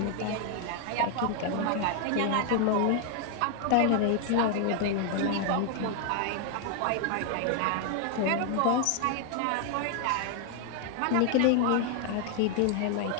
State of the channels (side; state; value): both; different; correlation 0.00